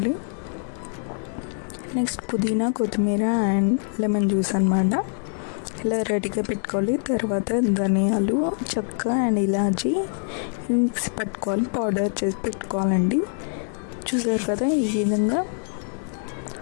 నెక్స్ట్ పుదీనా, కొత్తిమీర అండ్ లెమన్ జ్యూస్ అన్నమాట ఇలా రెడీగా పెట్టుకోవాలి. తర్వాత ధనియాలు, చెక్క అండ్ ఇలాచి మిక్స్ పట్టుకోవాలి, పౌడర్ చేసి పెట్టుకోవాలండి. చూసారు కదా, ఈ విధంగా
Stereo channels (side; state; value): right; silent; 57 dB below the other